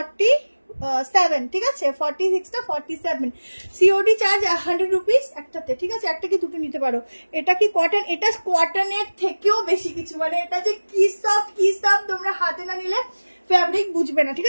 ঠিক আছে, 46টা 47। সিওডি চার্জ 100 রুপিস একটাতে, ঠিক আছে, একটা কি দুটো নিতে পারো। এটা কি কটন? এটা কটনের থেকেও বেশি কিছু, মানে এটা যে কি সফট তোমরা হাতে না নিলে ফ্যাব্রিক বুঝবে না, ঠিক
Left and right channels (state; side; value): inverted; both; correlation -1.00